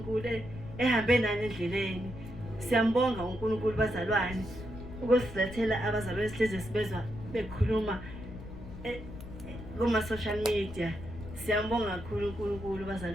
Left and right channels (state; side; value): noise; left; rumble, 13 dB below the sound